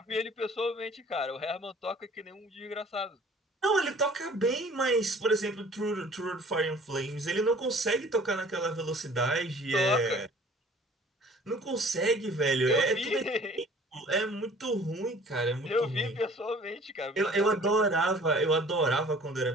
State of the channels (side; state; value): both; normal; correlation 0.51